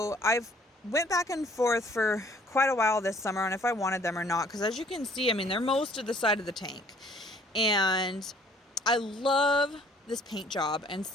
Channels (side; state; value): both; normal; correlation 0.58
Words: I've went back and forth for quite a while this summer on if I wanted them or not, because as you can see, they're most of the side of the tank, and I love this paint job, and